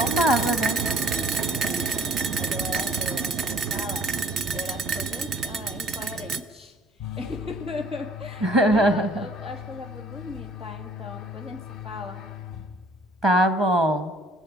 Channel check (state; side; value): normal; both; correlation 0.55